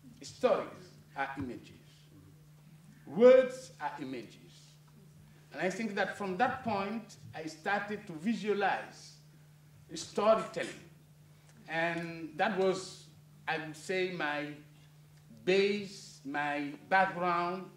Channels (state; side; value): identical; both; correlation 1.00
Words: Stories are images. Words are images. And I think that from that point, I started to visualize storytelling. And that was, I would say, my base, my background